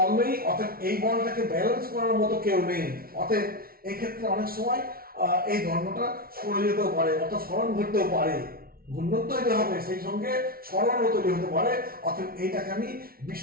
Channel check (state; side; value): late; left; 0.43 ms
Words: নেই, অতএব এই বলটাকে ব্যালেন্স করার মতো কেউ নেই, অতএব এই ক্ষেত্রে অনেক সময় এই দণ্ডটা সরে যেতেও পারে, অর্থাৎ সরণ ঘটতেও পারে। ঘূর্ণন তৈরি হবে, সেই সঙ্গে সরণও তৈরি হতে পারে। অতএব এইটাকে আমি